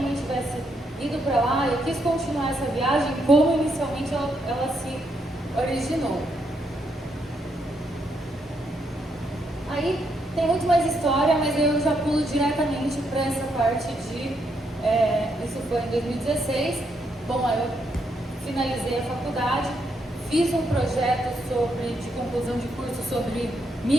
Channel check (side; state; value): both; normal; correlation 0.77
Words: mãe tivesse ido para lá, eu quis continuar essa viagem como inicialmente ela se originou. Aí tem muito mais história, mas eu já pulo diretamente para essa parte de... isso foi em 2016. Bom, aí eu finalizei a faculdade, fiz um projeto de conclusão de curso sobre